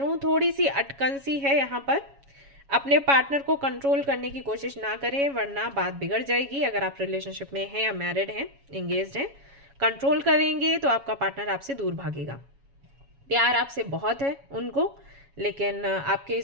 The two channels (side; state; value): left; late; 7.2 ms